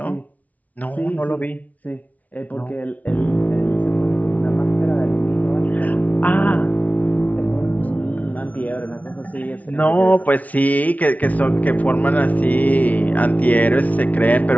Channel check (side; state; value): right; late; 0.072 ms